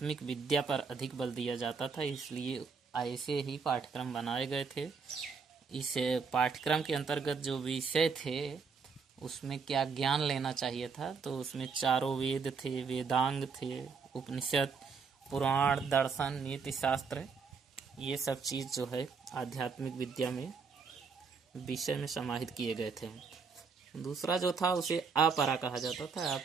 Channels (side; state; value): left; quieter; 5.3 dB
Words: विद्या पर अधिक बल दिया जाता था, इसलिए ऐसे ही पाठ्यक्रम बनाए गए थे। इस पाठ्यक्रम के अंतर्गत जो विषय थे उसमें क्या ज्ञान लेना चाहिए था, तो उसमें चारों वेद थे, वेदांग थे, उपनिषद, पुराण, दर्शन, नीति शास्त्र, ये सब चीज़ जो है आध्यात्मिक विद्या में विषय में समाहित किए गए थे। दूसरा जो था उसे अपरा कहा जाता था,